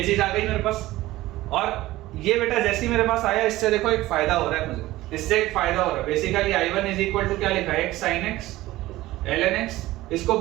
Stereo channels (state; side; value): quieter; left; 17.1 dB